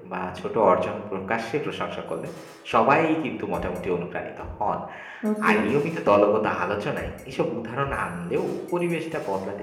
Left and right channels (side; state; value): both; identical; correlation 1.00